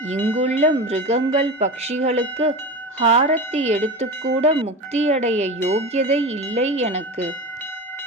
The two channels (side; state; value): both; normal; correlation 0.27